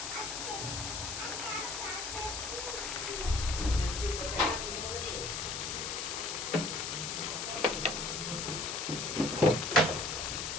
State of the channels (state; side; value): noise; left; hiss, 4 dB below the sound